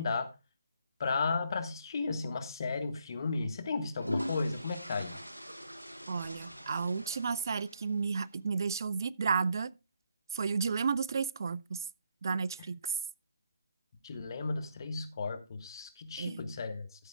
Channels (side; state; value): both; inverted; correlation -0.75